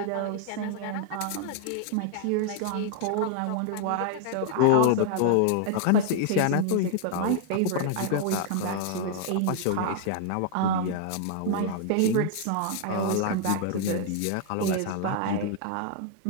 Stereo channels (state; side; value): different; both; correlation 0.00